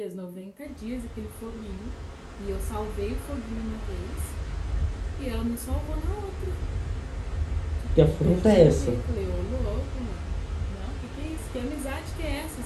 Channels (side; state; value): both; identical; correlation 1.00